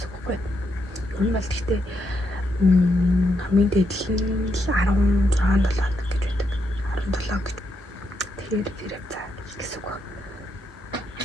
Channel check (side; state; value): both; normal; correlation 0.80